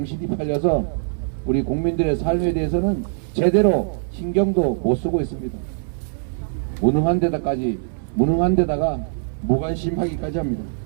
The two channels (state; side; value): silent; left; digital silence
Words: 팔려서 우리 국민들의 삶에 대해서는 제대로 신경도 못 쓰고 있습니다. 무능한 데다가 무관심하기까지 합니다.